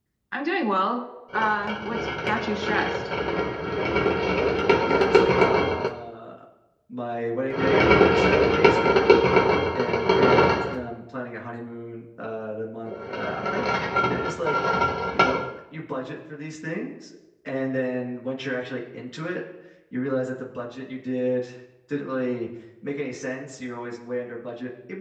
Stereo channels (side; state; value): both; identical; correlation 1.00